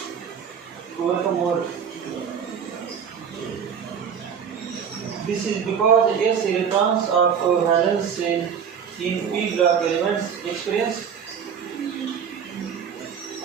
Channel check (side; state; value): left; quieter; 7.4 dB